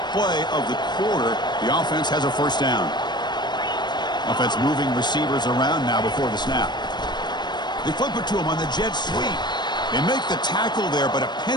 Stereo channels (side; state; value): right; late; 0.21 ms